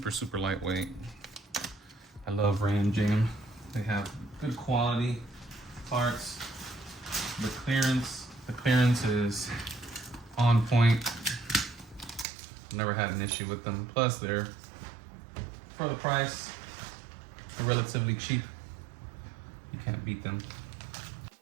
super lightweight. I love Ram Jam. They have good quality parts. The clearance is on point. Never had an issue with them. Plus, they're, for the price, they're relatively cheap. You can't beat them.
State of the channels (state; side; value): drops out; left; at 12.2 s